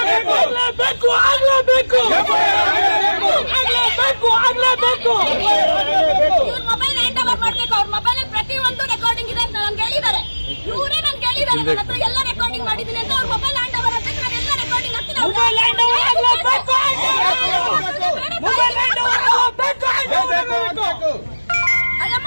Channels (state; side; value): inverted; both; correlation -1.00